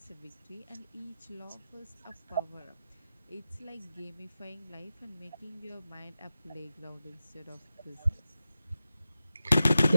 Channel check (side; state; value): both; inverted; correlation -0.92